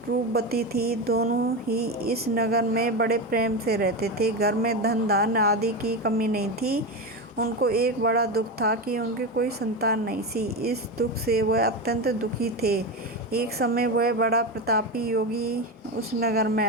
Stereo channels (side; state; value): both; normal; correlation 0.17